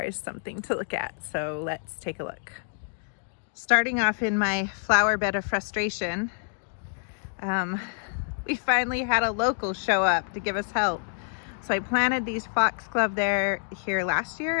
is something to look at. So let's take a look. Starting off in my flower bed of frustration, we finally had a local show up to give us help. So I planted these foxglove here last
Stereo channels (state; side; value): silent; right; digital silence